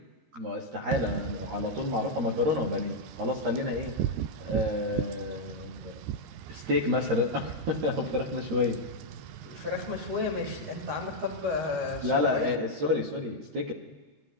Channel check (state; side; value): late; left; 13 ms